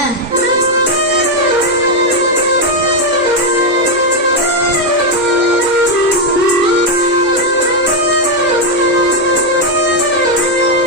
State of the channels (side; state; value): both; normal; correlation 0.02